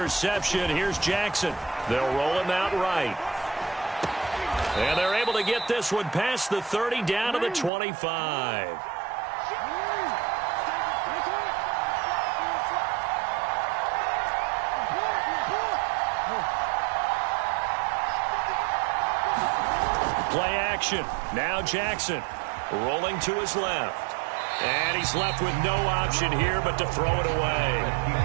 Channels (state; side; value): drops out; left; at 7.7 s